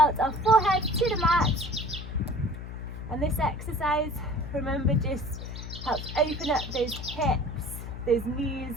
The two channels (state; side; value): noise; left; hum, 9 dB below the sound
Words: our forehead to the mat. And this exercise, remember, just helps open up those hips, those knees,